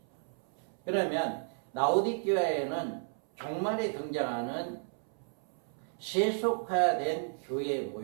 그러면 라오디게아에는 종말에 등장하는 세속화된 교회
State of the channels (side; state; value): left; silent; 56 dB below the other